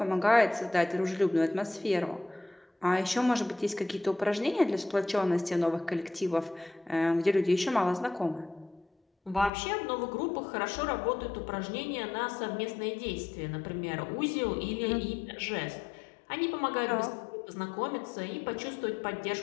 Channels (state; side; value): drops out; right; at 9.5 s